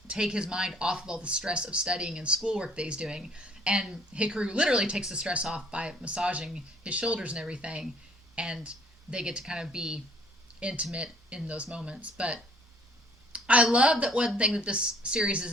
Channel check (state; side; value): normal; both; correlation 0.58